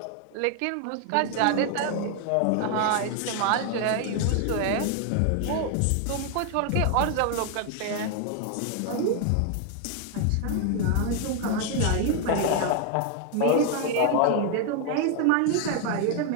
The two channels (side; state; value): both; different; correlation 0.01